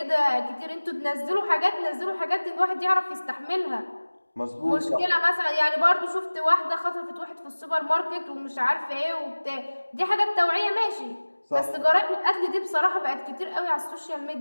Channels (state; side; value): inverted; both; correlation -1.00